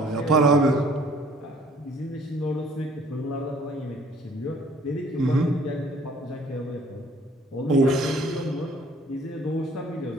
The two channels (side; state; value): both; normal; correlation 0.57